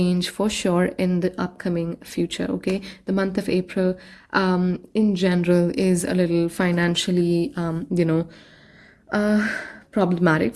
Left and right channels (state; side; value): identical; both; correlation 1.00